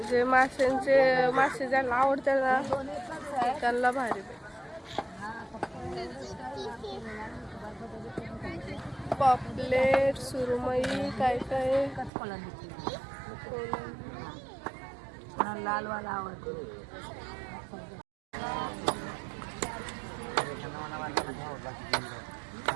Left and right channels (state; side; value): drops out; left; at 12.1 s